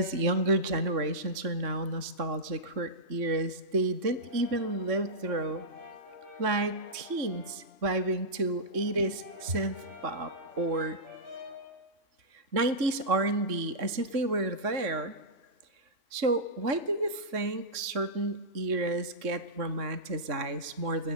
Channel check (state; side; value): late; left; 3.6 ms